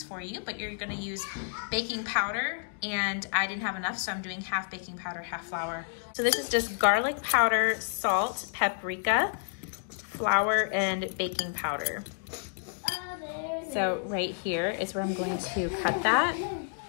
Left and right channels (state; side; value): silent; right; digital silence